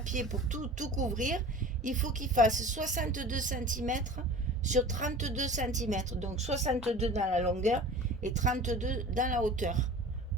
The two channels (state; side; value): normal; both; correlation 0.40